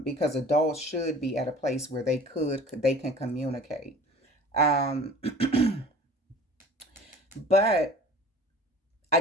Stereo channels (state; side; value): normal; both; correlation 0.44